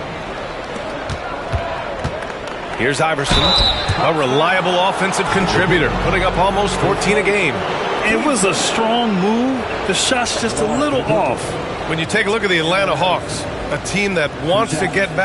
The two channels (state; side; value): identical; both; correlation 1.00